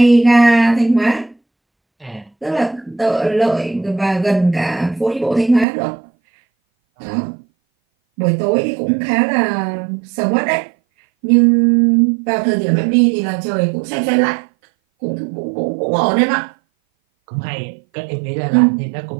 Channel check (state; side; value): drops out; left; at 5.7 s